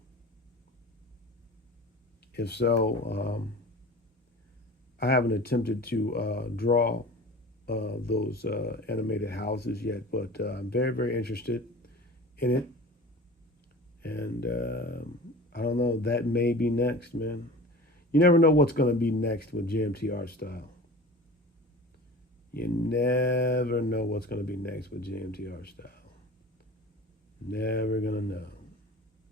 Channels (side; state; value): both; normal; correlation 0.38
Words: If so, I haven't attempted to draw those animated houses yet, but I'm very, very interested in it. And I don't know, that may be next, man. You never know what's going to be next with JMT art style. You never know what's going to be next with JMT art style. Never gonna know.